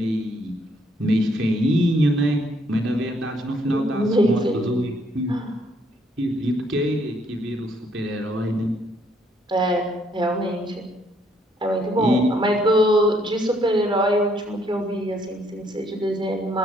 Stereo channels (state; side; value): normal; both; correlation 0.69